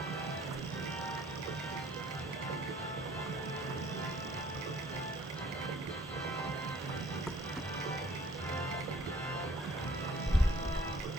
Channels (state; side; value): normal; both; correlation 0.58